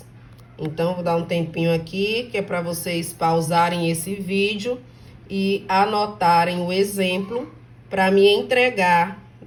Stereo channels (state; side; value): identical; both; correlation 1.00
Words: Então, vou dar um tempinho aqui, que é para vocês pausarem esse vídeo e anotarem o exemplo para me entregar